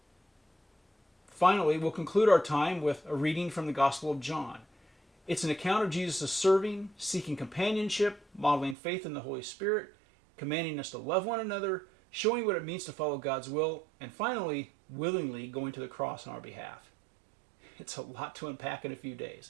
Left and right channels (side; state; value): left; drops out; at 8.8 s